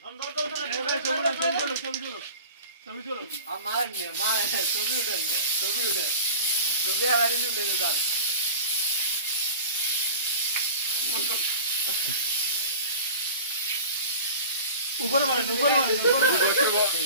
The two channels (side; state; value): both; inverted; correlation -0.36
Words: করে আমার নিয়ে মা ছবি উঠেন না ছবি উঠেন ছবি আবার উঠে যান উপরে মার